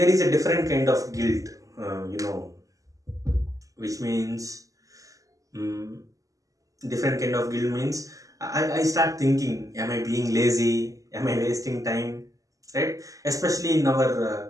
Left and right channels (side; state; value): left; late; 0.16 ms